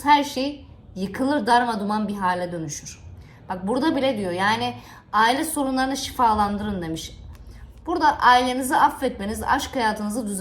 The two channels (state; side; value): identical; both; correlation 1.00